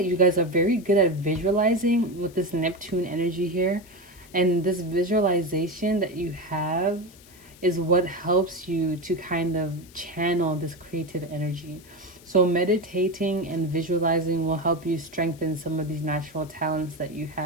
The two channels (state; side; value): noise; left; hiss, 24 dB below the sound